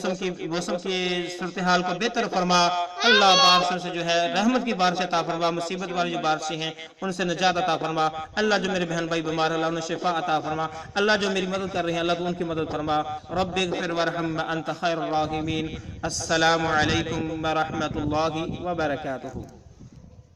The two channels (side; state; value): both; identical; correlation 1.00